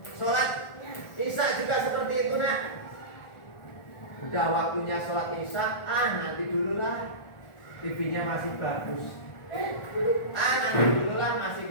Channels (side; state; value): right; late; 1.4 ms